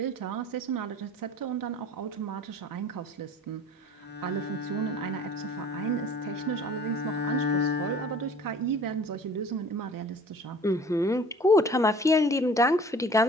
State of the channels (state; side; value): normal; both; correlation 0.47